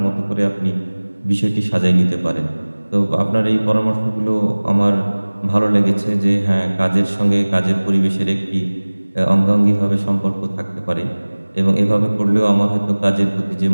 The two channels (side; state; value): both; inverted; correlation -1.00